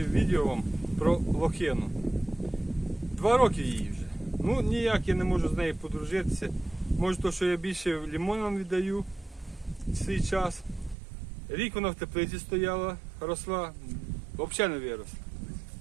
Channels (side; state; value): left; drops out; at 11.0 s